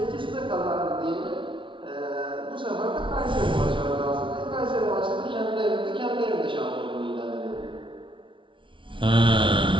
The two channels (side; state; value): left; late; 0.25 ms